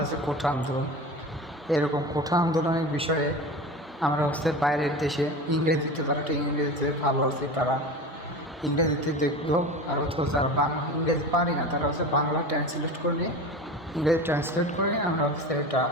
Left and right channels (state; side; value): normal; both; correlation 0.31